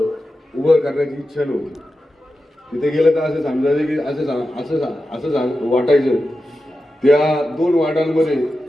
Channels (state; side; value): normal; both; correlation 0.91